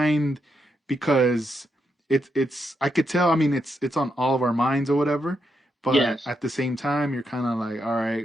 because it's I could tell, I mean it's on all of our minds or whatever, but Yes. at the same time you're kind of like, all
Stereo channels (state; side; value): normal; both; correlation 0.82